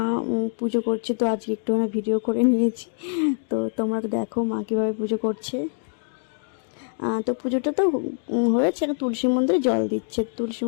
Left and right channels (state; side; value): silent; right; digital silence